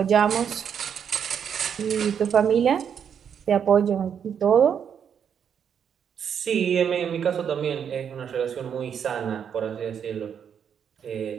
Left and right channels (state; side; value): quieter; left; 7.9 dB